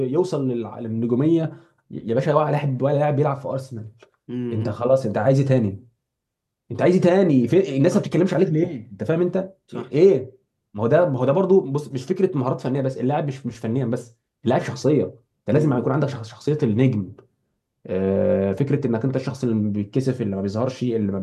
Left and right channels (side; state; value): both; identical; correlation 1.00